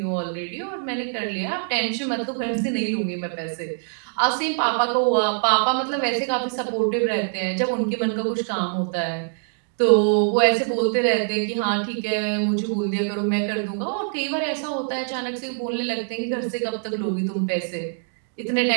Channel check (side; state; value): left; silent; digital silence